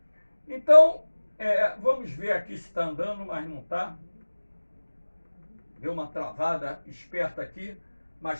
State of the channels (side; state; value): both; inverted; correlation -1.00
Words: Então, vamos ver aqui se está andando, mas não está. Deu uma travada esperta aqui,